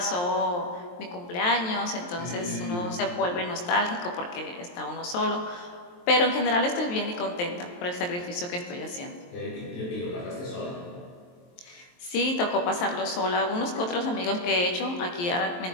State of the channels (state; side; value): late; right; 23 ms